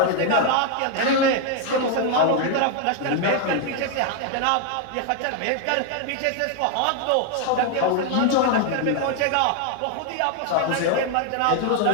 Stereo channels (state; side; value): different; both; correlation 0.01